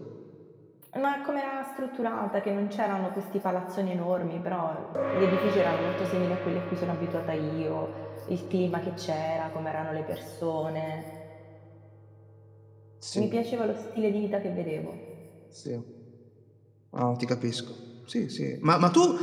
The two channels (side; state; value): both; identical; correlation 1.00